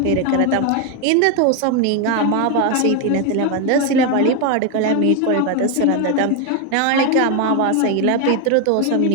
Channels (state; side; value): different; both; correlation 0.01